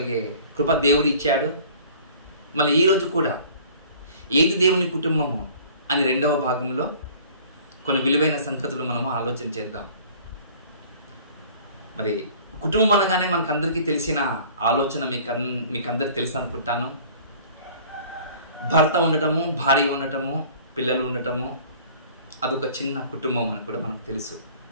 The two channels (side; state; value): both; inverted; correlation -0.49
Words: కృప దేవుడు ఇచ్చాడు. మళ్ళీ ఈరోజు కూడా ఏది దేవుని కుటుంబము అని 2వ భాగంలో కొన్ని విలువైన సంగతులు మనము ఆలోచన చేద్దాం. మరి కుటుంబం అనగానే మనకందరికీ తెలిసిన ఆలోచన మీకందరికి తెలుసు అనుకుంటాను. భర్త ఉండటము, భార్య ఉండటము, పిల్లలు ఉండటము, అదొక చిన్న కుటుంబం అని కూడా మనకు తెలుసు.